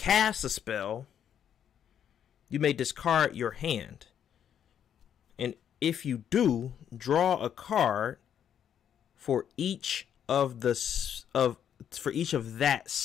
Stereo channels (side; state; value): right; quieter; 9.1 dB